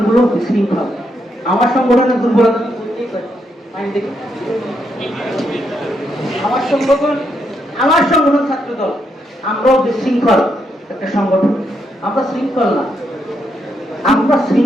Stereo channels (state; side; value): normal; both; correlation 0.79